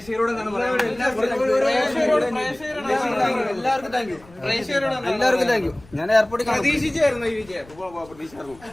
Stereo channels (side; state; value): left; noise; rumble, 24 dB below the sound